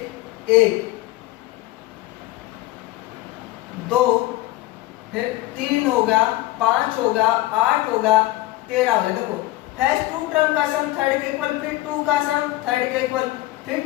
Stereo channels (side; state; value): right; quieter; 17.5 dB